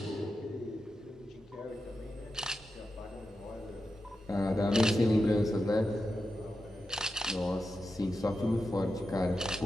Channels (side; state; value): both; normal; correlation 0.90